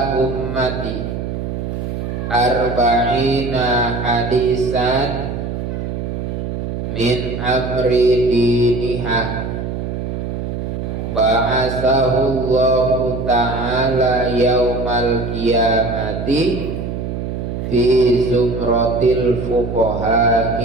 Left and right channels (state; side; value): noise; right; hum, 4 dB below the sound